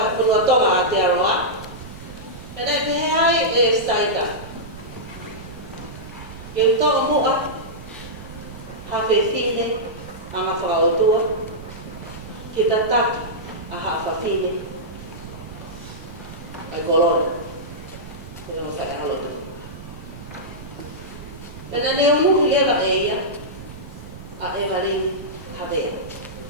punua tonga ate aroa. Pena ke hai staita. Ke tonga mua hafe fine anga whakao tua. Kita taki a hafa fine ai kolona. Pena mo fai halotu. Pena ne umuhi leva eia a eva ring havea.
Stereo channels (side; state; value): right; noise; rumble, 14 dB below the sound